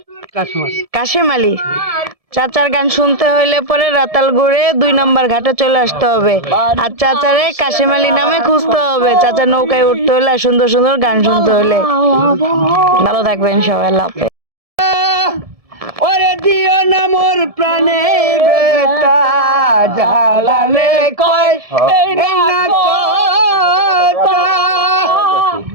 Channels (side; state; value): left; late; 1.7 ms